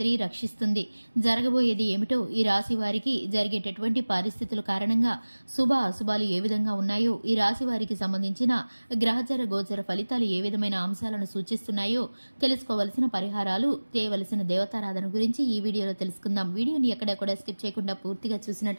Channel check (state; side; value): inverted; both; correlation -1.00